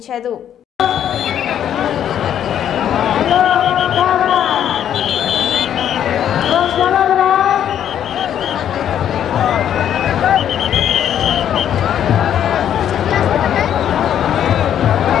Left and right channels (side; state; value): right; quieter; 10.0 dB